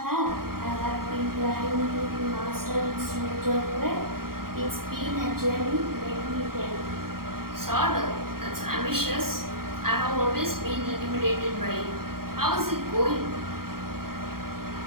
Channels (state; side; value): late; left; 0.93 ms